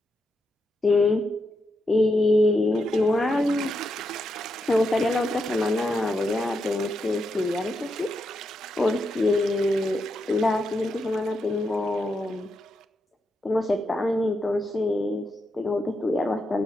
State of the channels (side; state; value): both; normal; correlation 0.84